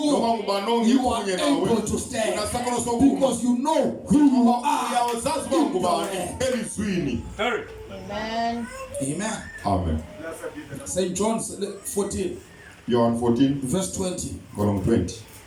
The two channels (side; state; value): both; identical; correlation 1.00